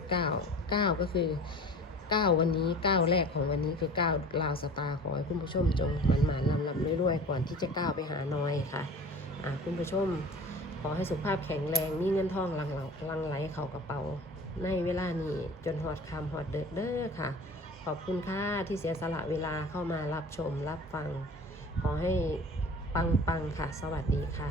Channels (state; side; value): normal; both; correlation 0.40